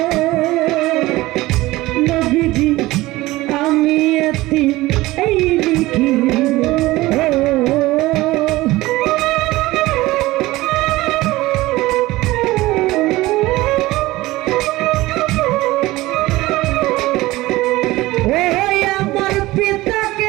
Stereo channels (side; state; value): left; quieter; 18.7 dB